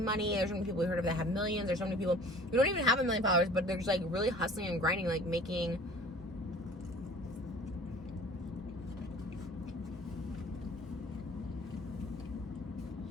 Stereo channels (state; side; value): normal; both; correlation 0.48